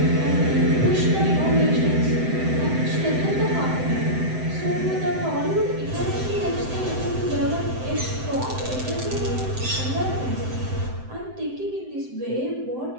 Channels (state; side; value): late; left; 7.8 ms